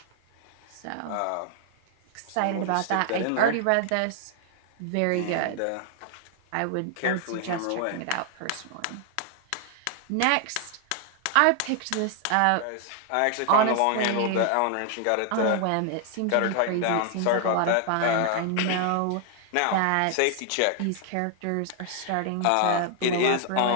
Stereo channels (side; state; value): both; different; correlation 0.00